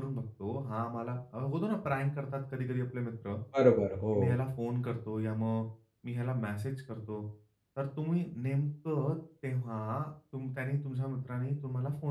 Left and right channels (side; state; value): both; identical; correlation 1.00